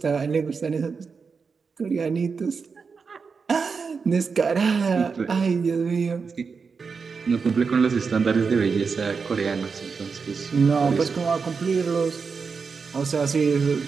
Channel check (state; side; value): quieter; left; 5.3 dB